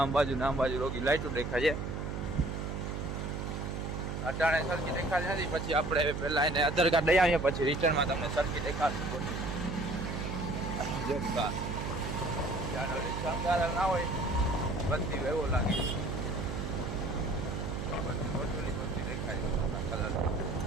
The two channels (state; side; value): noise; right; hum, 4 dB below the sound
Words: બાજુ ને આમ બાજુ રોગી લાઇટો દેખાય છે. અટાણે સરખી દેખાતી નથી. પછી આપણે પહેલાં એને આધાર કાર્ડ લઈ આવીએ પછી રિટર્નમાં તમને સરખી દેખાડશે બોટું. જોરદાર શણગાર ના હોય બધી એવો લાગે. બધી બોટોની બધી દેખાય કલર.